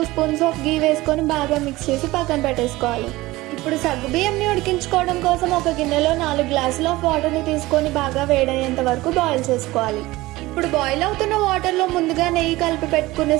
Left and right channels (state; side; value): quieter; left; 19.1 dB